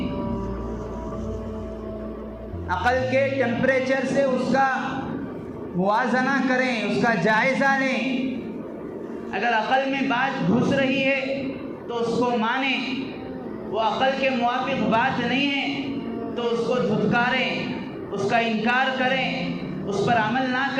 عقل کے ٹیمپریچر سے اس کا موازنہ کریں، اس کا جائزہ لیں۔ اگر عقل میں بات گھس رہی ہے تو اس کو مانیں، وہ عقل کے موافق بات نہیں ہے تو اس کو دھتکاریں، اس کا انکار کریں، اس پر عمل نہ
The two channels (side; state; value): both; identical; correlation 1.00